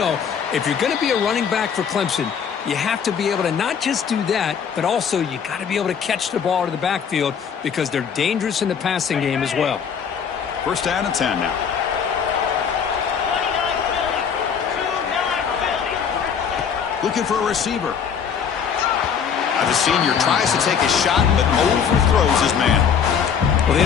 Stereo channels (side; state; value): right; quieter; 7.2 dB